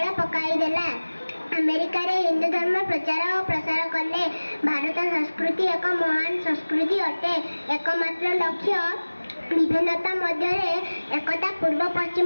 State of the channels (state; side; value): inverted; both; correlation -1.00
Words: पकाई देला। अमेरिका रे हिंदू धर्म प्रचार और प्रसार कले। भारत संस्कृति एक महान संस्कृति अटे। एकमात्र लक्ष्य विभिन्नता मध्य एकता। पूर्व